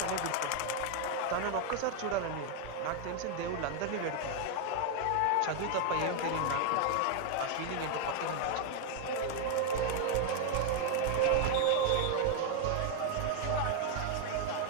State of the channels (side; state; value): both; different; correlation 0.00